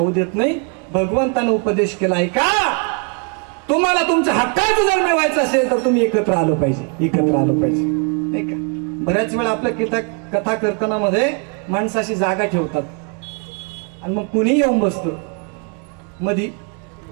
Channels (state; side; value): quieter; left; 37.0 dB